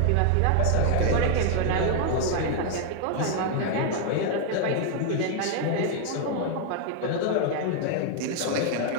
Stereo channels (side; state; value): both; different; correlation 0.00